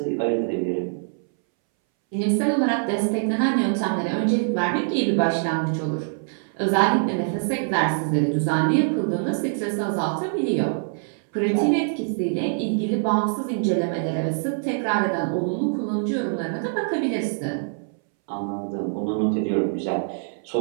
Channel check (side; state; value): left; silent; 62 dB below the other